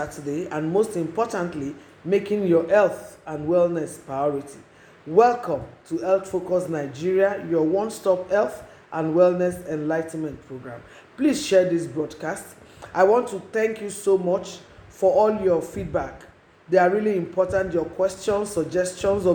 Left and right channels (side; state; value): both; identical; correlation 1.00